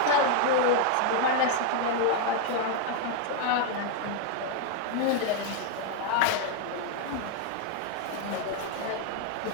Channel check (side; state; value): both; different; correlation 0.00